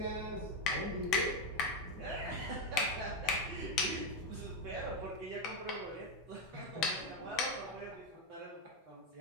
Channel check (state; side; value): normal; both; correlation 0.07